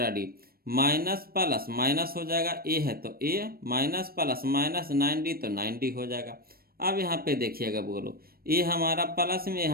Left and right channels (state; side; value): late; left; 0.44 ms